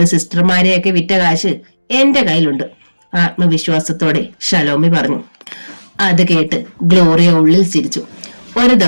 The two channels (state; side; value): inverted; both; correlation -1.00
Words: സിസ്റ്റർമാരെയൊക്കെ വിറ്റ കാശ് എന്റെ കയ്യിലുണ്ട്, ആത്മവിശ്വാസത്തോടെ ഷലോമി പറഞ്ഞു. അത് കേട്ട് ഗ്ലോറിയ ഉള്ളിൽ ചിരിച്ചു. ഒരു